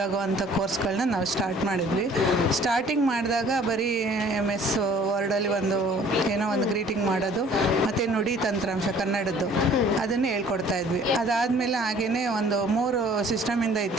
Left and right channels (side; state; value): both; normal; correlation 0.54